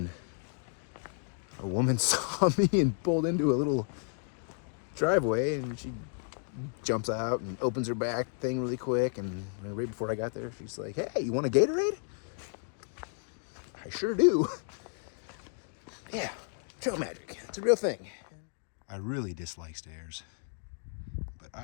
a woman saw me and pulled into a little driveway, and she jumps out and opens her back thing really quick, and right before I got there, she's like, hey, you want a Gatorade? I sure do. Yeah, trail magic. It's a real thing. I really dislike stairs, but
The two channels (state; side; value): silent; right; 56 dB below the other